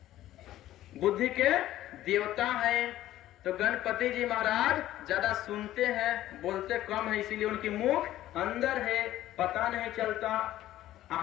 बुद्धि के देवता हैं। तो गणपति जी महाराज ज्यादा सुनते हैं, बोलते कम है, इसीलिए उनकी मुख अंदर है, पता नहीं चलता।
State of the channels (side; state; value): right; quieter; 14.0 dB